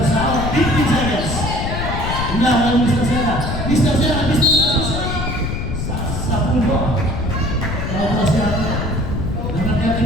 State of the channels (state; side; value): noise; left; rumble, 3 dB below the sound